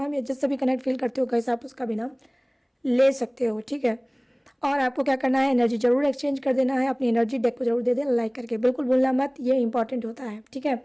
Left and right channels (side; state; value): both; identical; correlation 1.00